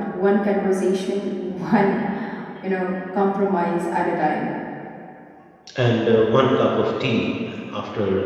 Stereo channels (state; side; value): identical; both; correlation 1.00